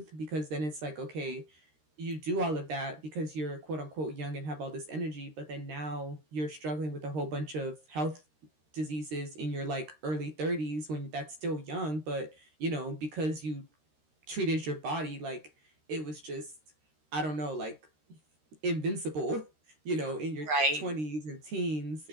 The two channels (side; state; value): left; late; 13 ms